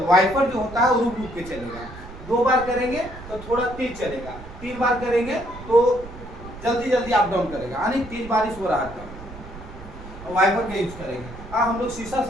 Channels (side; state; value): right; noise; rumble, 15 dB below the sound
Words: वाइपर जो होता है वो रुक रुक के चलेगा। 2 बार करेंगे तो थोड़ा तेज चलेगा। 3 बार करेंगे तो जल्दी जल्दी अप डाउन करेगा, यानी तेज बारिश हो रहा है वाइपर का यूज करेंगे। हम लोग शीशा